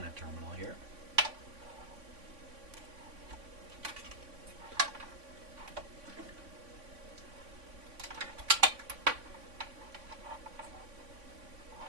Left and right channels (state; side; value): late; left; 3.5 ms